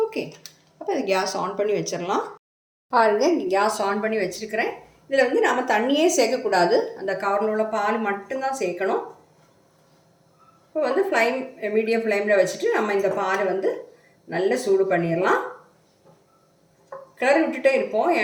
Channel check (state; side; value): identical; both; correlation 1.00